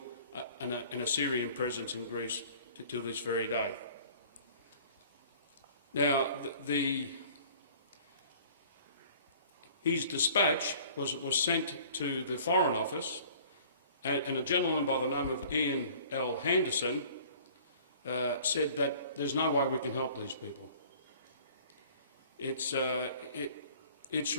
an Assyrian presence in Greece to this very day. Now, his dispatch was sent to the Foreign Office, and a gentleman by the name of Ian L. Henderson said that there's no way we can help these people. It's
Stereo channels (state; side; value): inverted; both; correlation -0.51